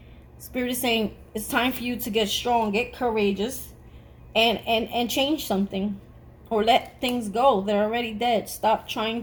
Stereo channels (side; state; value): both; identical; correlation 1.00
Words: Spirit is saying it's time for you to get strong, get courageous, and change something. Or let things go. They're already dead. Stop trying